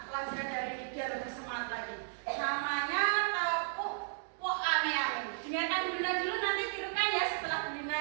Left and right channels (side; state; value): left; silent; digital silence